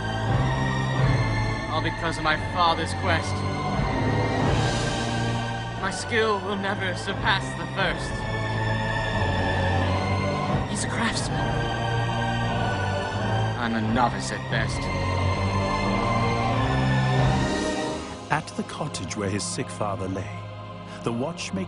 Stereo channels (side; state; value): both; identical; correlation 1.00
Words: all because of my father's quest. My skill will never surpass the first. He's a craftsman. I'm a novice at best. At the cottage where his sick father lay, the